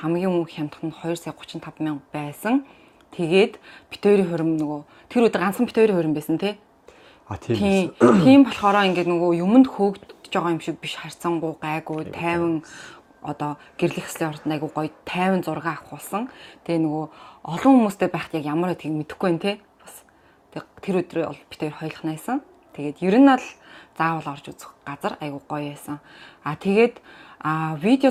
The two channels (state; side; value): identical; both; correlation 1.00